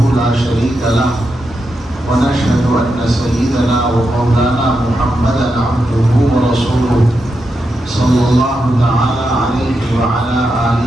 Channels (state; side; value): normal; both; correlation 0.86